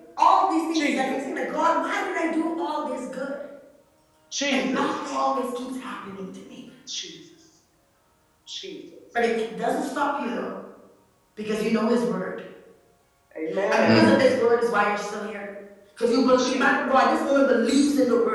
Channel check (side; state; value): both; identical; correlation 1.00